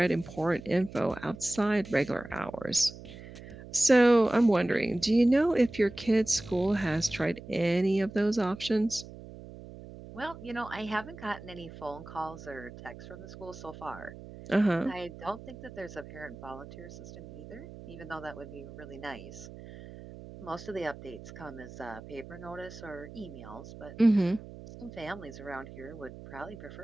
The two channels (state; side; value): noise; right; hum, 15 dB below the sound